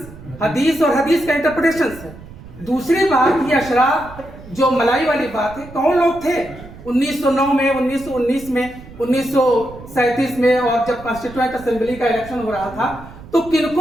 हदीस और हदीस का इंटरप्रिटेशंस है। दूसरी बात, ये अशराफ जो मलाई वाली बात है, कौन लोग थे 1909 में, 1919 में, 1937 में, और जब कॉन्स्टिट्यूएंट असेंबली का इलेक्शन हो रहा था तो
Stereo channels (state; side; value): noise; right; rumble, 17 dB below the sound